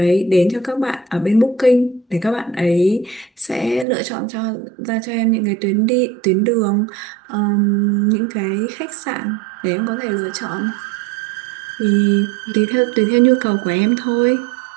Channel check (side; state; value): left; drops out; at 3.9 s